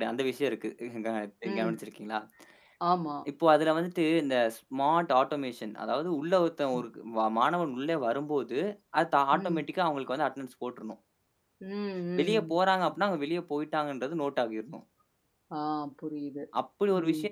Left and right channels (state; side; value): identical; both; correlation 1.00